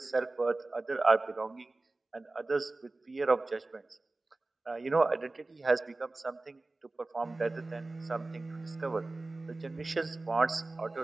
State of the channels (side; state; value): left; quieter; 3.1 dB